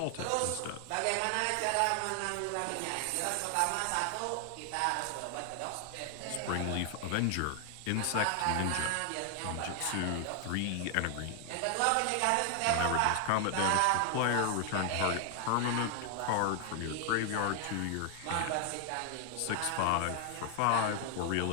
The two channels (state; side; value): different; both; correlation 0.00